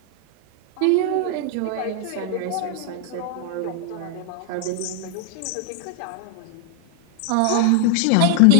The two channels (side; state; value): both; different; correlation 0.00